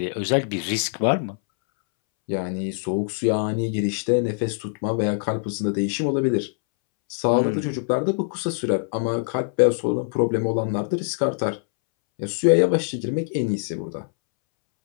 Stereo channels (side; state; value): right; silent; 63 dB below the other